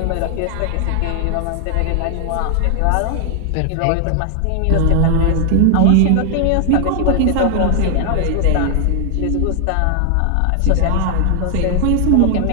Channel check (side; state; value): both; different; correlation 0.00